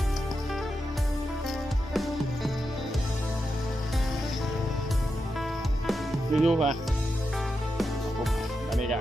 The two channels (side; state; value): both; normal; correlation 0.87